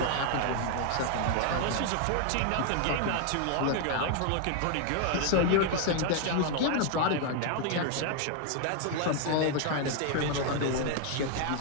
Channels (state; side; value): different; both; correlation 0.00